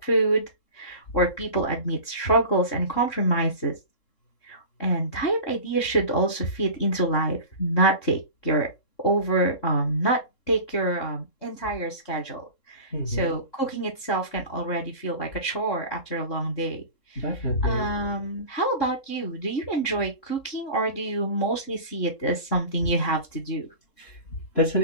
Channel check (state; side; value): late; right; 3.7 ms